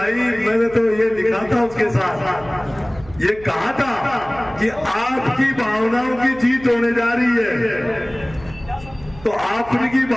मैंने तो ये लिखा था उसके साथ, ये कहा था कि आपकी भावनाओं की जीत होने जा रही है। तो आपकी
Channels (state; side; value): noise; right; hum, 20 dB below the sound